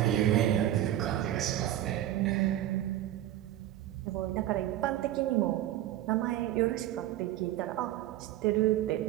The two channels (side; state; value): left; quieter; 13.2 dB